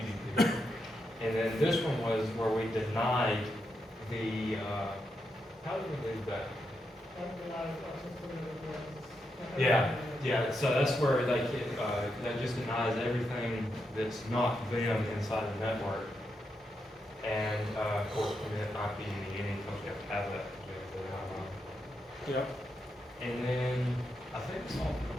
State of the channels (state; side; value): normal; both; correlation 0.84